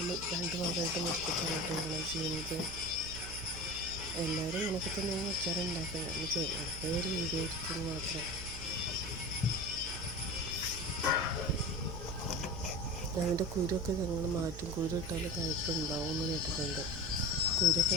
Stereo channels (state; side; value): noise; right; hum, 10 dB below the sound